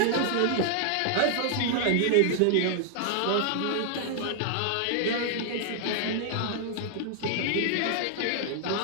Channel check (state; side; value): different; both; correlation 0.00